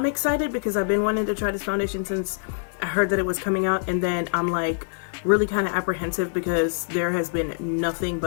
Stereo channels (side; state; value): right; silent; digital silence